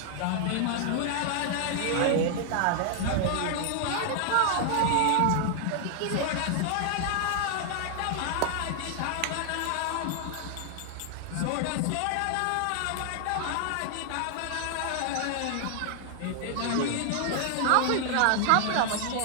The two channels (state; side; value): different; both; correlation 0.00